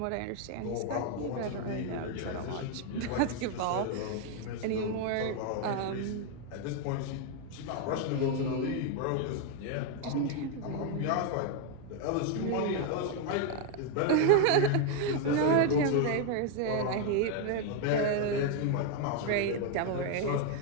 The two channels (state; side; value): different; both; correlation 0.01